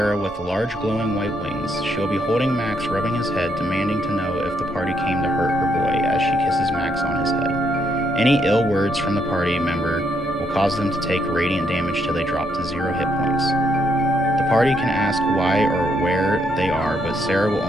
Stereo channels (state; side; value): normal; both; correlation 0.75